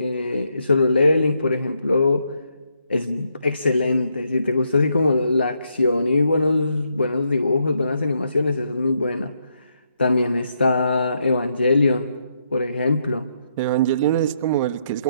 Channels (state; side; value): inverted; both; correlation -0.77